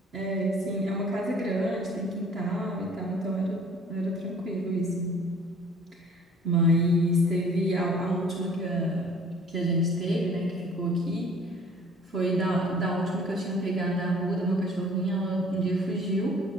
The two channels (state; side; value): normal; both; correlation 0.52